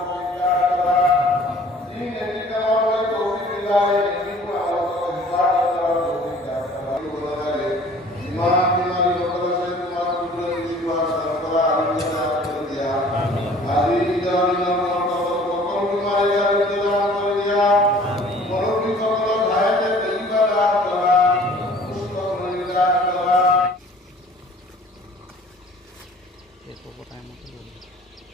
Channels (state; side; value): normal; both; correlation 0.51